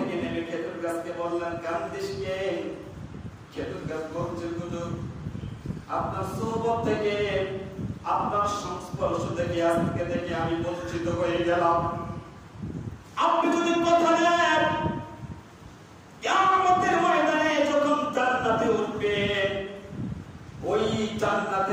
নেমে খেজুর গাছকে বললেন, কান্দিস কে? খেজুর গাছ বলছে, হুজুর আপনার সোহবত থেকে, আপনার সংস্পর্শ থেকে আজকে থেকে আমি বঞ্চিত হয়ে গেলাম। আপনি যদি কথা দেন কিয়ামতের ময়দানে যখন জান্নাতে উঠবেন, ওই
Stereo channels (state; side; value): identical; both; correlation 1.00